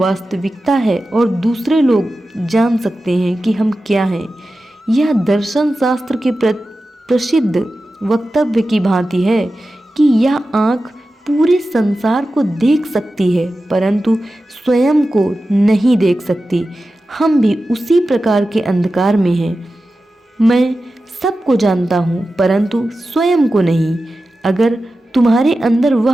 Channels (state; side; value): normal; both; correlation 0.93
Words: है, और दूसरे लोग जान सकते हैं कि हम क्या हैं। यह दर्शन शास्त्र के प्रसिद्ध वक्तव्य की भांति है कि यह आँख पूरे संसार को देख सकती है परंतु स्वयं को नहीं देख सकती। हम भी उसी प्रकार के अंधकार में हैं। मैं सबको जानता हूँ परंतु स्वयं को नहीं। अगर तुम्हारे अंदर